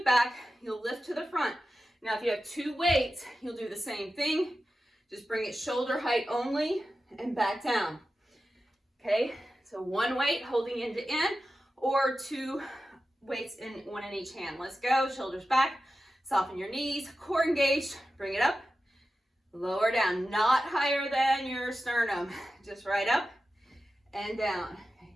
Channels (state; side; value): normal; both; correlation 0.92